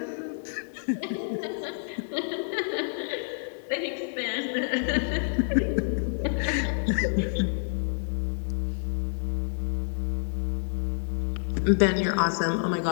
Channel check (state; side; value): silent; right; digital silence